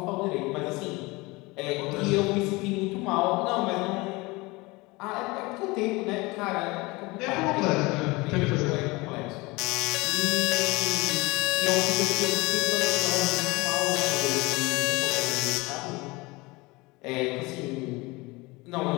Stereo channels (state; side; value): quieter; right; 23.6 dB